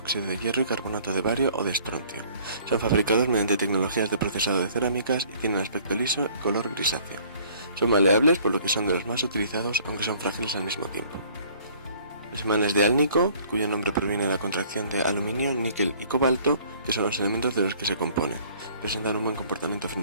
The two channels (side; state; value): both; inverted; correlation -0.56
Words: de hierro y carbonato de bario o de estroncio. Son fabricados mediante tecnologías de procesado de cerámicas y tienen aspecto liso y color grisáceo. Son maleables, por lo que son de los más utilizados, aunque son frágiles al mismo tiempo. Los imanes de Alnico, cuyo nombre proviene de la contracción de aluminio, níquel y cobalto, que son los elementos de los que se componen, presentan un buen comportamiento